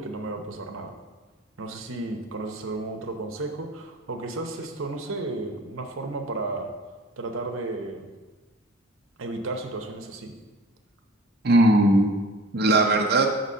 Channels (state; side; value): normal; both; correlation 0.43